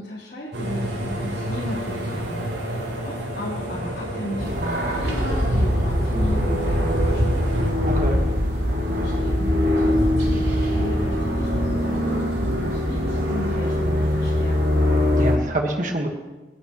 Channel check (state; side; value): normal; both; correlation 0.79